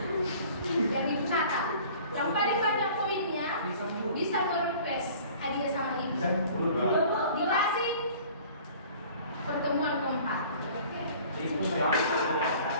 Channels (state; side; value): inverted; both; correlation -0.48